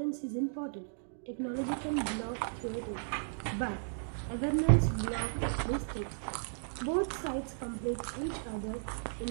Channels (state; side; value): silent; left; digital silence